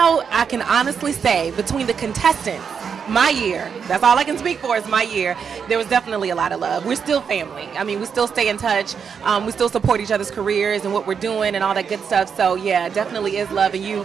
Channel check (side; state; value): left; quieter; 6.7 dB